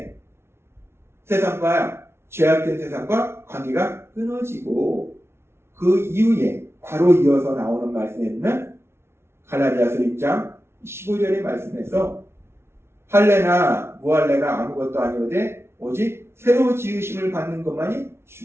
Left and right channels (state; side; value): late; left; 0.12 ms